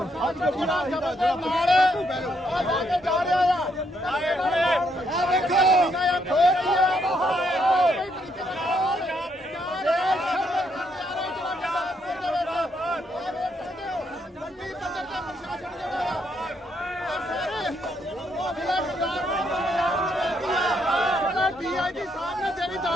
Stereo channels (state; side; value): normal; both; correlation 0.74